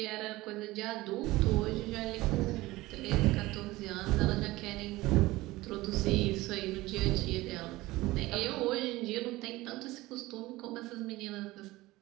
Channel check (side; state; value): left; quieter; 19.0 dB